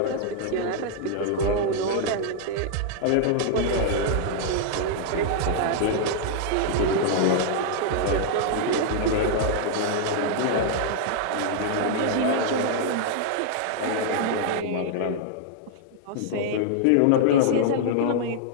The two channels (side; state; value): both; different; correlation -0.01